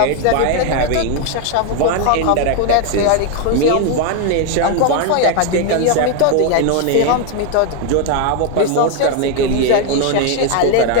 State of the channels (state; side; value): different; both; correlation 0.01